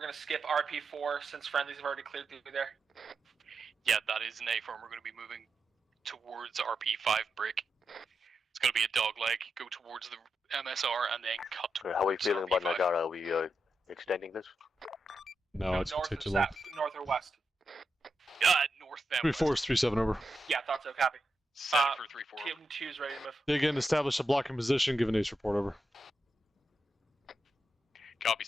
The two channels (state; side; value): normal; both; correlation 0.87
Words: to skip RP4 since friendlies have already cleared through there. Yeah, that is an A-firm. We're going to be moving towards RP5 break. It's going to be a dog leg. Go towards the MSR and then cut towards How are we feeling about RP5. Nagara? Are we extending this? No, it's north take or too long. north or west? North then 3-4 is 3-7 over. Yeah, thought so. Copy. Set for 3-4. Team 2's ready to move. Dig in, establish a blocking position, give an ace report over. Copy,